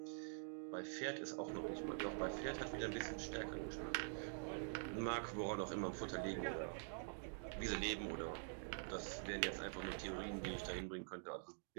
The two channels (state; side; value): silent; left; digital silence